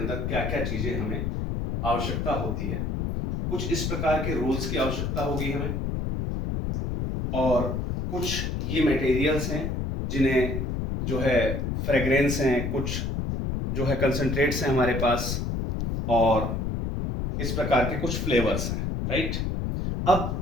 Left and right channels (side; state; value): left; noise; rumble, 1 dB below the sound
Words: क्या क्या चीज़ें हमें आवश्यकता होती है। कुछ इस प्रकार के रोल्स की आवश्यकता होगी हमें, और कुछ ये मटेरियल्स हैं जिन्हें जो है फ्रेग्रेंस हैं, कुछ जो है कंसंट्रेट्स हैं हमारे पास, और इस प्रकार के कुछ फ्लेवर्स हैं, राइट।